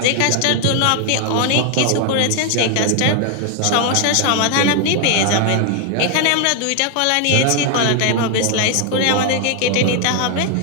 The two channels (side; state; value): both; different; correlation 0.00